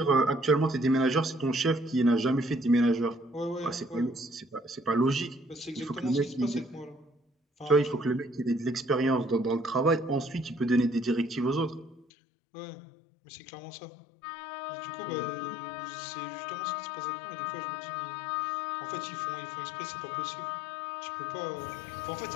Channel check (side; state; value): right; drops out; at 12.1 s